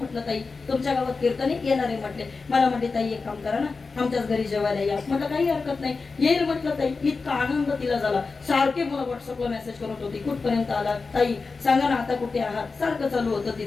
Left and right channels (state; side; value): quieter; right; 4.3 dB